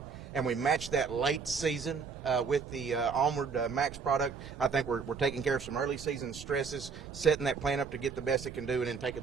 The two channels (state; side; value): quieter; left; 5.6 dB